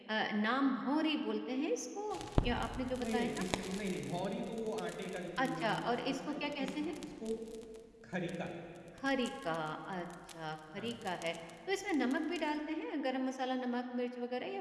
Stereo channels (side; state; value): both; identical; correlation 1.00